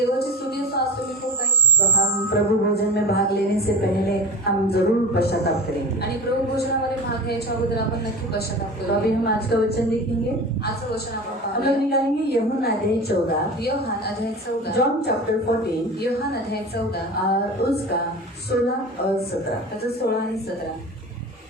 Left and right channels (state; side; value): normal; both; correlation 0.32